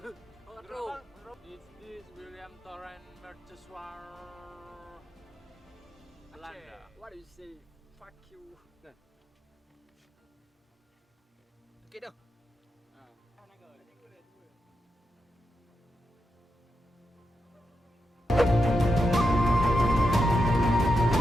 this William Torrent mercusuar Belanda? What do you say? Fuck you. Okey dah.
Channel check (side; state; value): both; normal; correlation 0.87